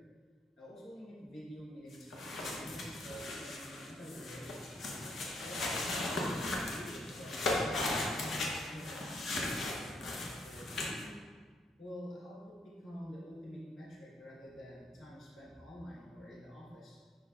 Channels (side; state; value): both; normal; correlation 0.71